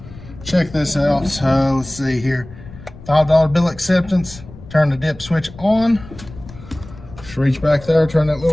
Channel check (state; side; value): noise; left; rumble, 17 dB below the sound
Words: check this out. So let's see here. $5 bill acceptance. Turn the dip switch on. Just reach back there, turn that